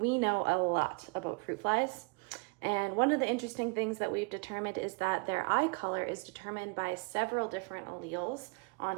know a lot about fruit flies. And one of the interesting things that we've determined is that their eye color is determined by several different alleles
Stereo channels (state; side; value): quieter; left; 31.7 dB